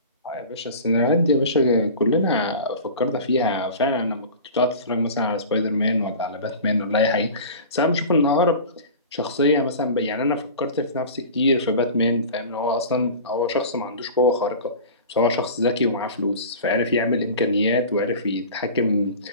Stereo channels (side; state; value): both; inverted; correlation -0.36